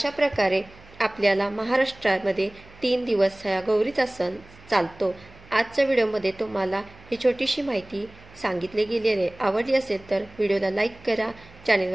प्रकारे आपल्याला महाराष्ट्रामध्ये 3 दिवस हा गौरीचा सण चालतो। आजच्या व्हिडिओमध्ये तुम्हाला ही छोटीशी माहिती सांगितली गेलेली आहे। आवडली असेल तर व्हिडिओला लाईक करा,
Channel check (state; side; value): noise; right; hum, 24 dB below the sound